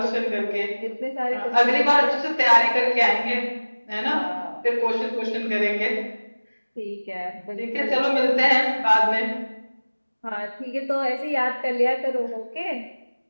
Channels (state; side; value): inverted; both; correlation -1.00